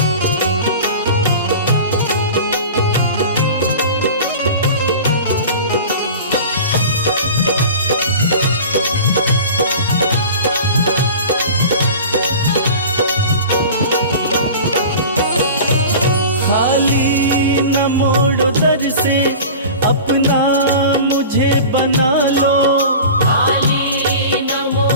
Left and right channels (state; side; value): inverted; both; correlation -0.36